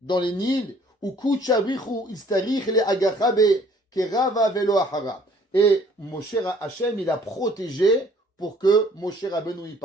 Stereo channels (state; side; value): normal; both; correlation 0.58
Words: les Nils, ou Kuchabrichu Istarich le Agachabe, Kerava Velo Ahara. Et Moshe Hachem, il a protégé pour que Moshe Rabbeinu y